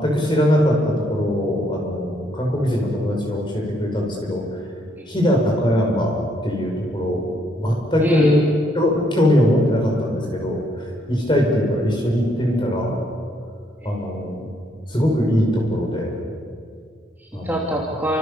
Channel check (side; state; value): both; normal; correlation 0.71